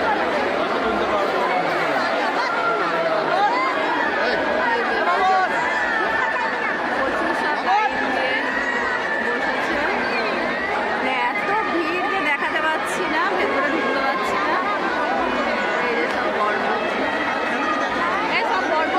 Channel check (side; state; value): both; identical; correlation 1.00